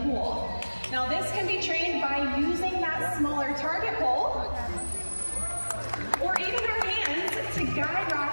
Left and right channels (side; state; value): both; inverted; correlation -1.00